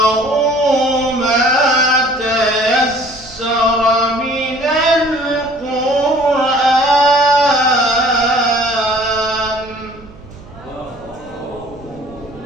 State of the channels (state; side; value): noise; right; hum, 22 dB below the sound